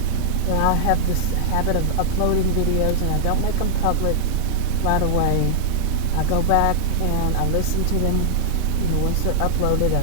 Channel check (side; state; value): both; different; correlation 0.00